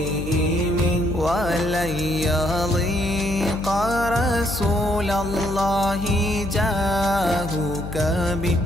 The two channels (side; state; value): left; noise; hum, 9 dB below the sound